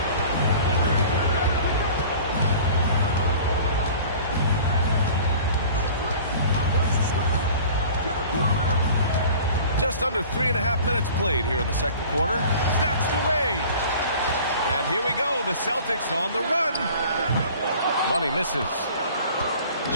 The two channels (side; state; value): both; inverted; correlation -0.45